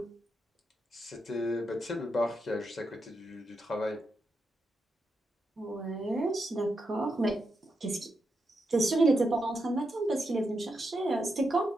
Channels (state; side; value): normal; both; correlation 0.84